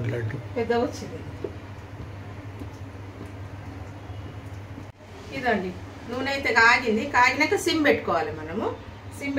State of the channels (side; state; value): both; identical; correlation 1.00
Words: లడ్డు పెద్దగా వచ్చింది. ఇదండి నూనె అయితే కాగింది. కాగినాక సిమ్ పెట్టుకోవాలి. మనము సిమ్